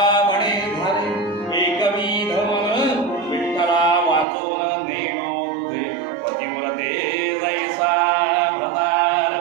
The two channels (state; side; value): drops out; left; at 4.2 s